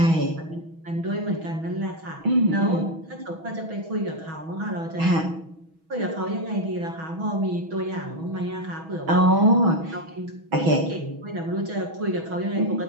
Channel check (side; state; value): left; late; 6.2 ms